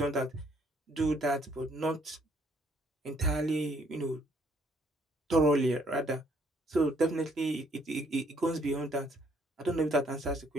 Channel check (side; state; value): both; normal; correlation 0.66